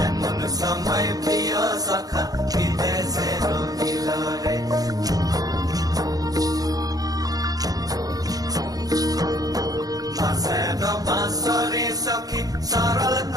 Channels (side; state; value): left; late; 0.18 ms